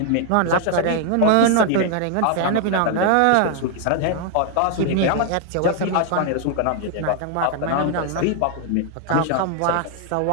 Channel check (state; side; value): different; both; correlation 0.00